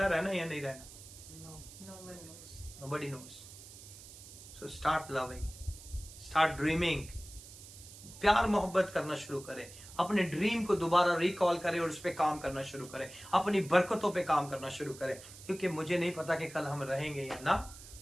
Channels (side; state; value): right; noise; hiss, 16 dB below the sound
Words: रहना या नहीं रहना? No one knows. Nobody knows. So start loving, start dreaming. प्यार मोहब्बत करना शुरू करें. अपने ड्रीम को दोबारा रिकॉल करें और उस पर काम करना शुरू करें. अपनी बरकतों पे काम करना शुरू करें, क्योंकि मुझे नहीं पता कि कल हम रहेंगे या ना